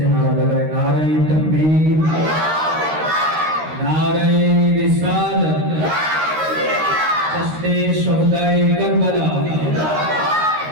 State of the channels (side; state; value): left; late; 13 ms